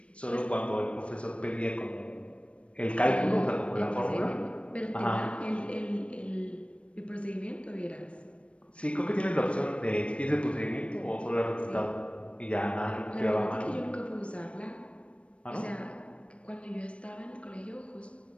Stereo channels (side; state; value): right; late; 0.061 ms